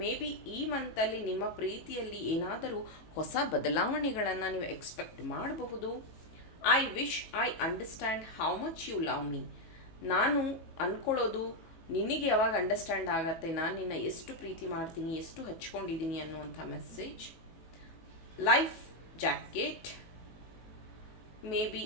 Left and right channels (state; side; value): late; right; 19 ms